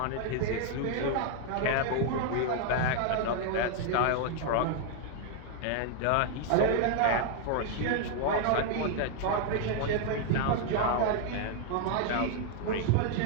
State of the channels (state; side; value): different; both; correlation 0.00